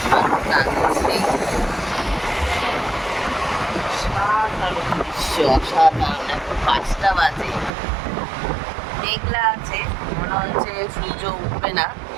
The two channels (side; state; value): left; drops out; at 7.7 s